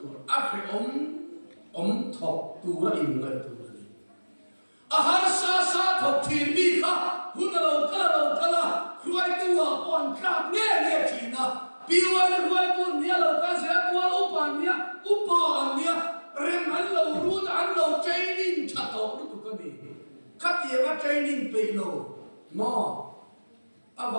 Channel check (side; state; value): both; inverted; correlation -1.00